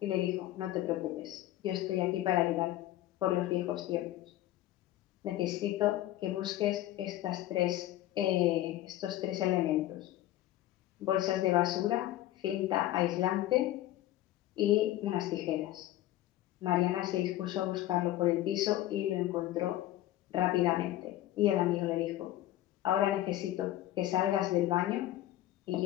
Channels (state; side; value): quieter; right; 14.5 dB